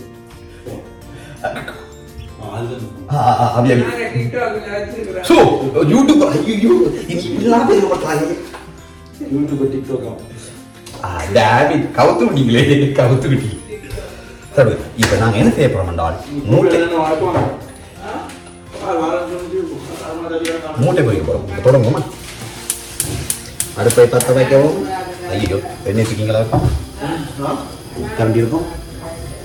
கவுத்து விட்டீங்களே கவுத்து விட்டீங்க. சரி இப்ப நாங்க என்ன செய்ய போறோம் என்றால் மூட்டை பொறிக்க போறோம். தொடங்குமா அடுப்பை பற்ற வைக்கவும். ஐயோ எண்ணெய் வச்சுக்கீங்களா கரண்டி இருக்கும்.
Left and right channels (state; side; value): identical; both; correlation 1.00